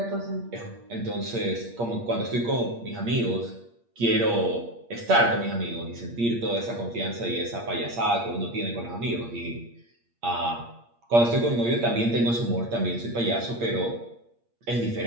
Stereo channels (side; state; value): left; late; 8.6 ms